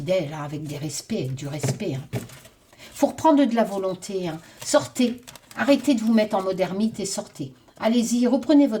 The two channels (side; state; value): both; identical; correlation 1.00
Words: hein, avec des respects, avec du respect. Hein. Faut reprendre de la volonté. Hein. Sortez. Arrêtez de vous mettre en mode ermite et sortez. Allez-y, reprenez